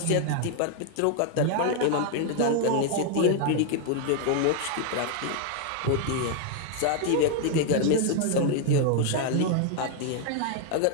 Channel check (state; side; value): different; both; correlation 0.00